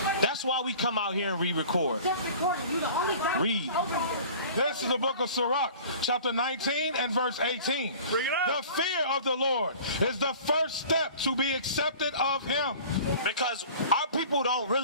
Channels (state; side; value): inverted; both; correlation -0.44